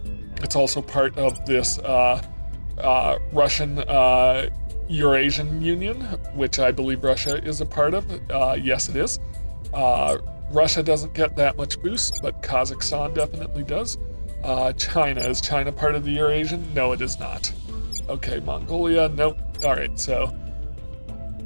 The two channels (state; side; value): inverted; both; correlation -1.00